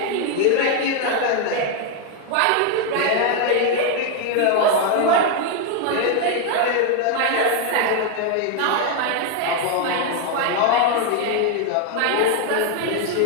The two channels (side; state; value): both; different; correlation 0.01